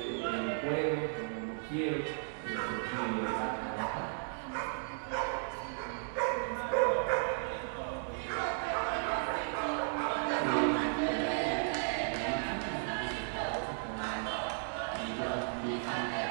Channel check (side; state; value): left; silent; digital silence